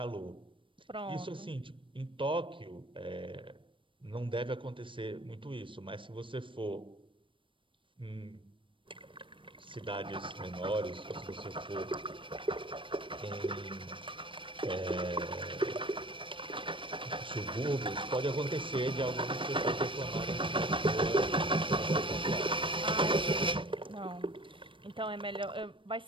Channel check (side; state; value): left; late; 0.25 ms